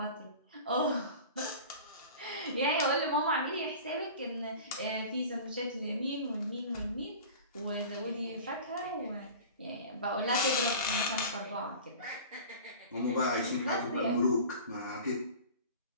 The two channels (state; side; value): inverted; both; correlation -0.38